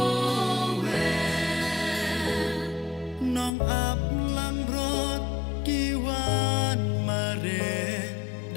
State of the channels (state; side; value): drops out; right; at 3.5 s